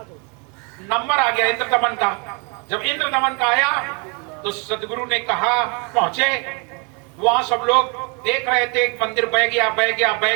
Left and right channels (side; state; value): left; quieter; 33.6 dB